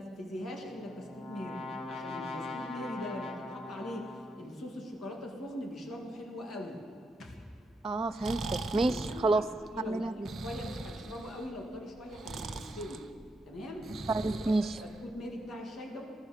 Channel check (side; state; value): both; normal; correlation 0.81